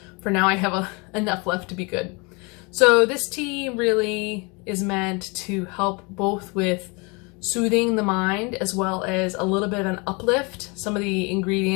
for now I have enough left to be good. So this tea really is meant to help both with soothing the mind as well as a little bit of an uplift. Some of the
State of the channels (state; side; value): quieter; right; 29.5 dB